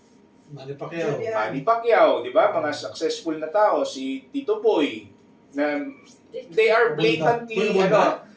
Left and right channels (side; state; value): both; identical; correlation 1.00